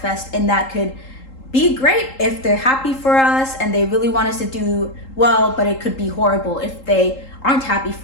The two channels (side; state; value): right; late; 3.8 ms